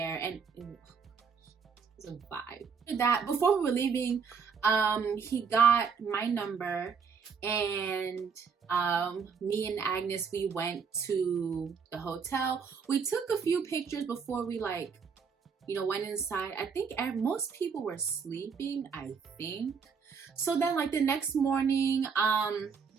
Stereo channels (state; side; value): quieter; left; 6.0 dB